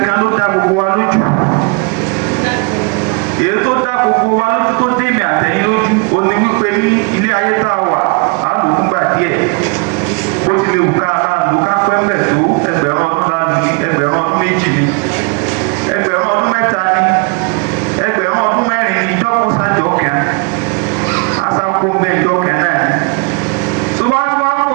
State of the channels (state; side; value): quieter; left; 32.5 dB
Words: ló dá gbogbo wa lójú èyí tó dá gbogbo wa lójú tó dé mi àtẹ̀yìn lójú ó ní wípé ní ilé ayé tá a wà á lò fún gbà díẹ̀ bó ti lè wù ká lò ká pẹ́pẹ́ tó ẹgbẹ̀rún ọdún lánàá ní ẹgbẹ̀rún ọdún méjì ní ẹgbẹ̀rún ọdún mẹ́ta ní ẹgbẹ̀rún ọdún mẹ́rin ní ìjọ́kùn sájọ́ kan asáko mẹ́jọ kan náà ní tó bá kó